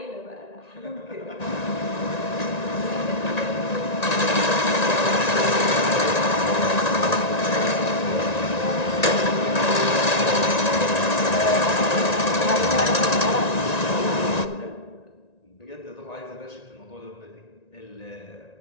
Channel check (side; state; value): right; late; 1.9 ms